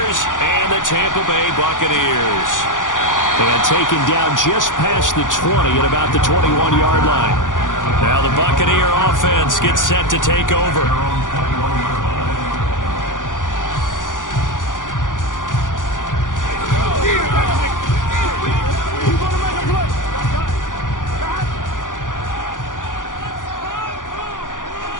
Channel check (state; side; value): late; right; 0.88 ms